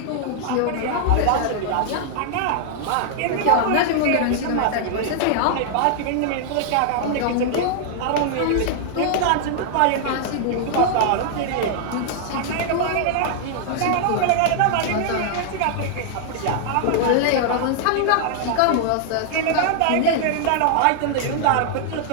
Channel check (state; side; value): different; both; correlation -0.01